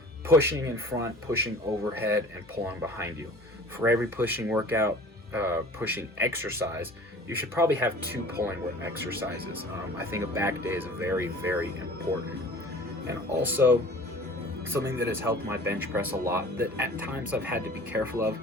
pushing in front, pushing overhead, and pulling behind you. For every pushing workout, pushing exercise, you should probably have 2 pulling exercises. I think a back day is very, very important. And also, something that has helped my bench press a lot that at times I've had to be careful of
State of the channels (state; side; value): normal; both; correlation 0.45